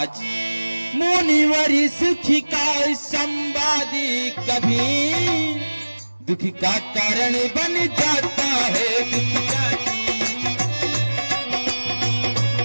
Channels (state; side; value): inverted; both; correlation -1.00